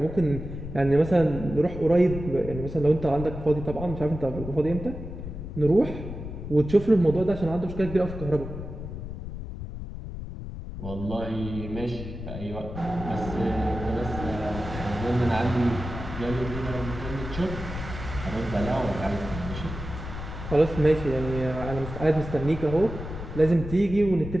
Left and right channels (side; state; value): left; noise; rumble, 8 dB below the sound